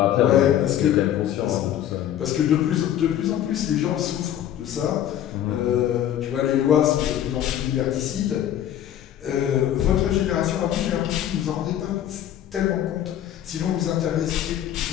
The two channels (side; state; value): right; quieter; 11.1 dB